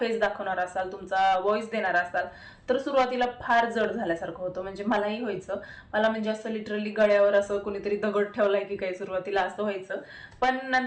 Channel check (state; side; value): identical; both; correlation 1.00